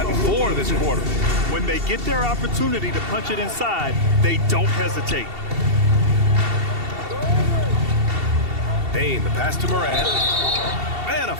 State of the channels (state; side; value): late; left; 2.7 ms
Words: 4 this quarter. When they get their opportunity to punch it inside, they don't hesitate. Bane, the pass to Morant. And a